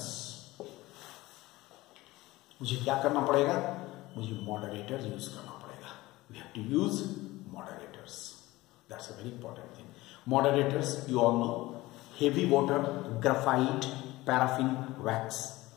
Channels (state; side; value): quieter; right; 19.1 dB